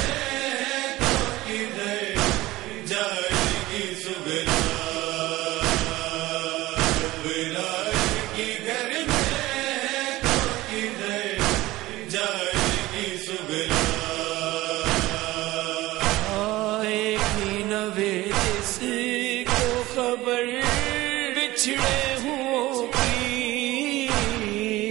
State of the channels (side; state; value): left; quieter; 18.1 dB